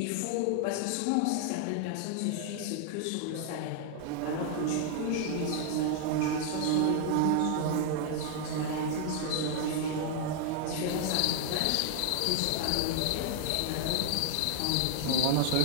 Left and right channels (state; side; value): different; both; correlation 0.00